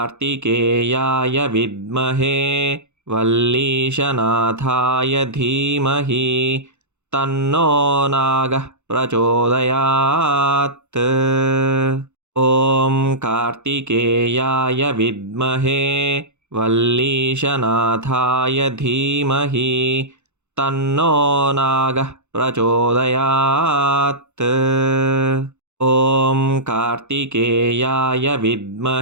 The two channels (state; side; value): late; left; 0.83 ms